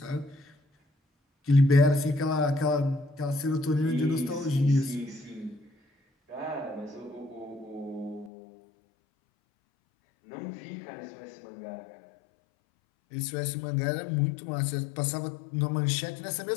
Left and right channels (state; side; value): drops out; right; at 8.3 s